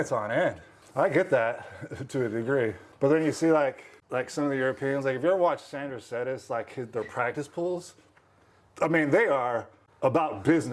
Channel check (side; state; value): both; identical; correlation 1.00